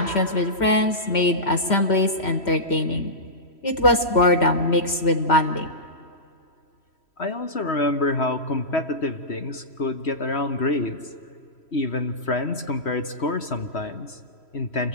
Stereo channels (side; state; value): right; late; 3.1 ms